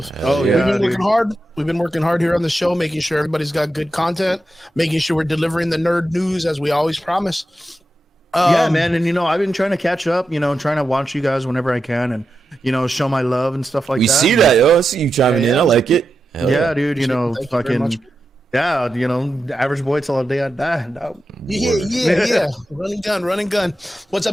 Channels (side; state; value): both; normal; correlation 0.89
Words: Yeah, we've been working hard. We've been working hard here on the show, making sure everybody's got good content, making sure we're delivering the nerd news as we always promise. Yeah, man. And I've been trying to catch up. Trying to watch you guys whenever I can, and show my love and stuff like that. We see that, yo. I see you chiming in. I like it. Hell yeah, dude. Fucking. Yeah, average boy till the day I die. No. Yeah. Running gun. What's